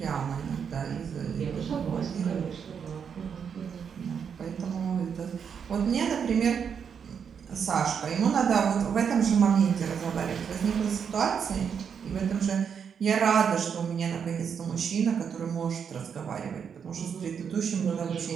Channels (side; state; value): left; quieter; 7.1 dB